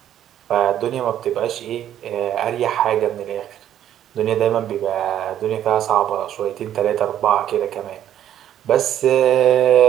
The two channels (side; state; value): left; quieter; 11.0 dB